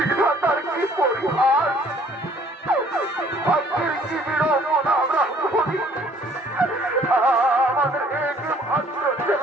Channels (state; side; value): normal; both; correlation 0.58